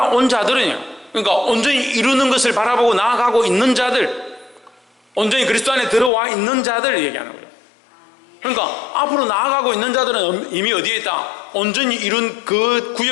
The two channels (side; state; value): right; drops out; at 6.1 s